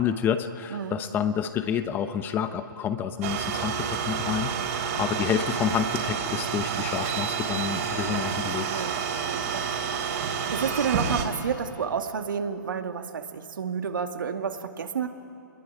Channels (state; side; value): normal; both; correlation 0.04